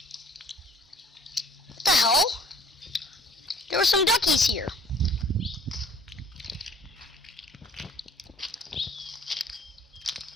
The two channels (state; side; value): normal; both; correlation 0.55